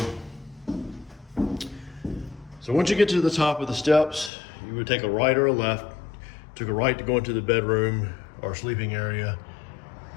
So once you get to the top of the steps, you would take a right or a left. Took a right to go into the bedroom or sleeping area,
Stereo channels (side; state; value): right; drops out; at 4.3 s